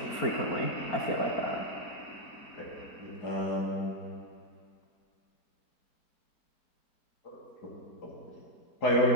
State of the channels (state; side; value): late; right; 4.4 ms